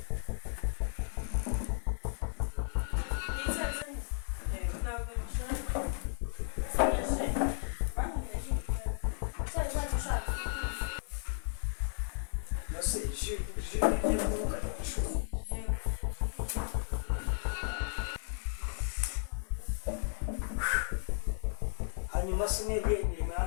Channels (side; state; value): right; silent; digital silence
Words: ntabwo nishaka icyayi ntacyo ushaka yose ukajya ku ishuri hanyuma sinebwe imirimo